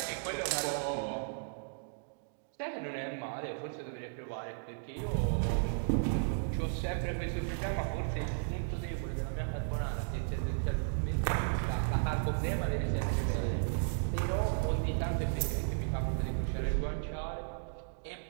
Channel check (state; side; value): silent; left; digital silence